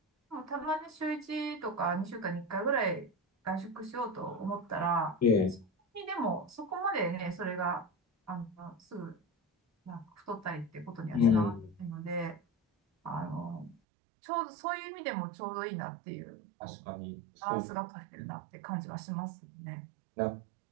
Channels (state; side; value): drops out; left; at 13.8 s